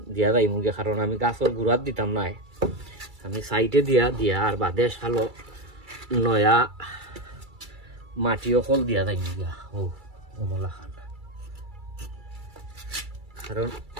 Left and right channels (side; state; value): left; late; 2.3 ms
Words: দিয়া যাই মুগে, কারণ আমি গাছর গুড়াত দিতাম নাই, আমি সাইডে দিয়া আর বাদে সালো নয়া মাটিও কল দিয়া যাই মুগিয়া ও মোলা খান। কারণ